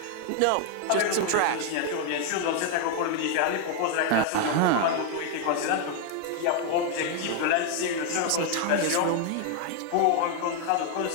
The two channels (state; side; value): different; both; correlation 0.01